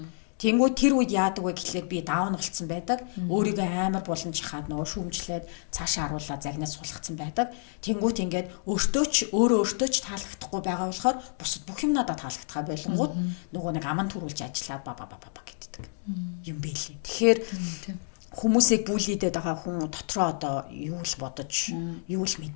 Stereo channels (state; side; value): silent; right; 59 dB below the other